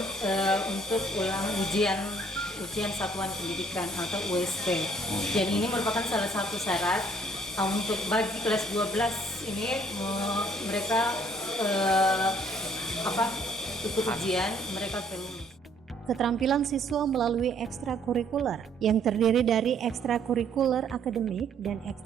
untuk ujian satuan pendidikan atau USP. Dan ini merupakan salah satu syarat untuk bagi kelas 12 ini mereka ikut ujian, mereka lulus. Keterampilan siswa melalui ekstrakurikuler yang terdiri dari ekstrakurikuler akademik dan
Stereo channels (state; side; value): normal; both; correlation 0.63